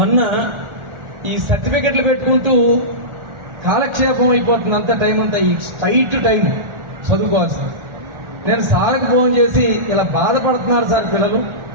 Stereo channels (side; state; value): left; late; 1.4 ms